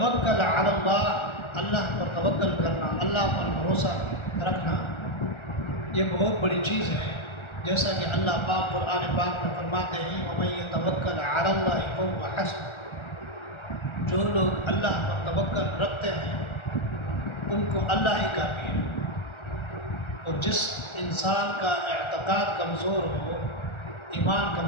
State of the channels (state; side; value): late; right; 1.4 ms